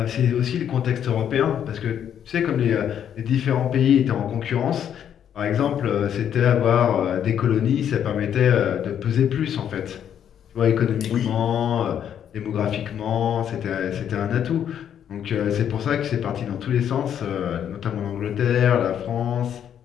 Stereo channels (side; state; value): right; quieter; 9.3 dB